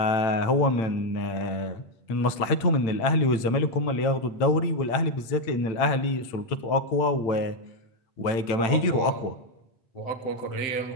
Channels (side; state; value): right; late; 8.9 ms